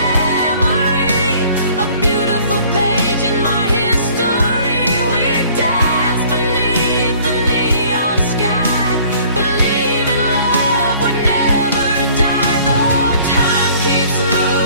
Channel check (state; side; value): inverted; both; correlation -0.54